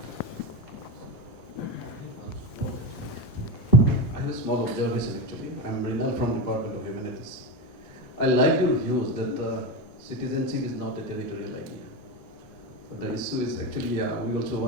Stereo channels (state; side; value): normal; both; correlation 0.17